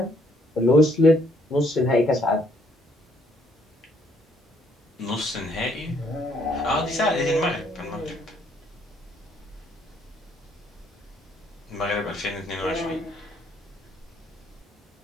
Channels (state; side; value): normal; both; correlation 0.67